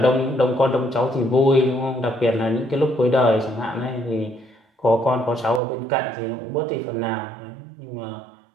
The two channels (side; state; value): left; drops out; at 5.6 s